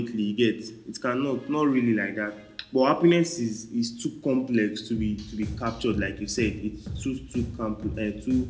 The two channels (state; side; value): identical; both; correlation 1.00